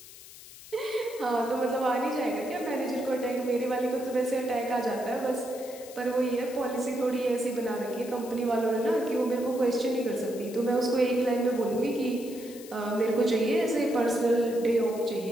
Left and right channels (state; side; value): noise; left; hiss, 17 dB below the sound